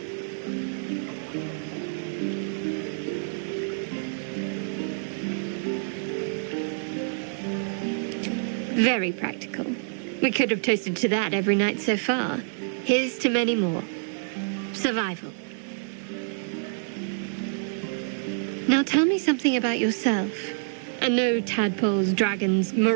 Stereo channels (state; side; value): silent; left; 60 dB below the other